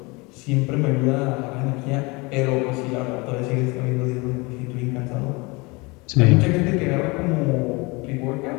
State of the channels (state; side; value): quieter; right; 26.2 dB